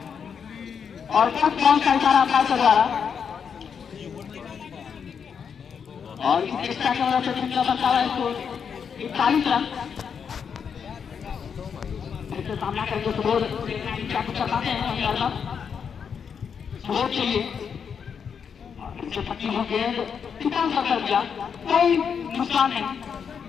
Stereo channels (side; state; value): right; quieter; 6.9 dB